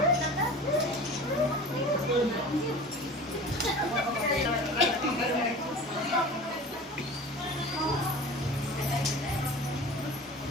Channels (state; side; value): normal; both; correlation 0.38